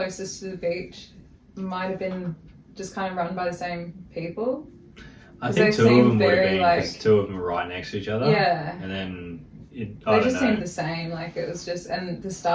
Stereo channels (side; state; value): both; identical; correlation 1.00